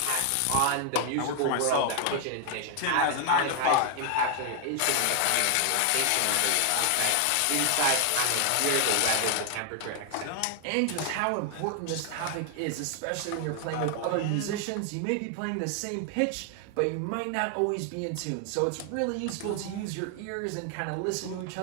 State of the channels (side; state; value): both; different; correlation 0.00